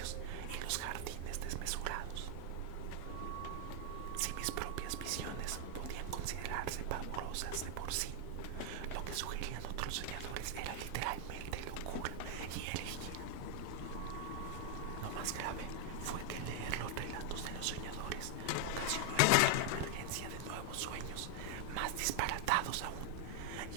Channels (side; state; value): both; different; correlation 0.00